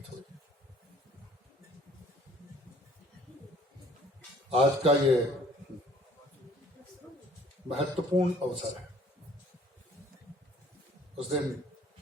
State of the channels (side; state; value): both; normal; correlation 0.55